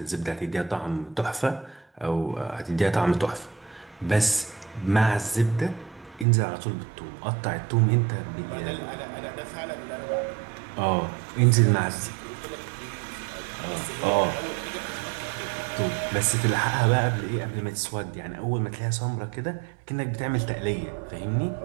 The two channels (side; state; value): left; drops out; at 6.2 s